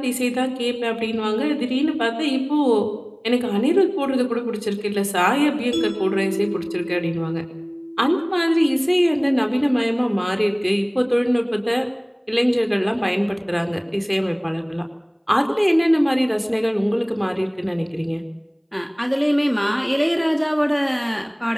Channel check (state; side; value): identical; both; correlation 1.00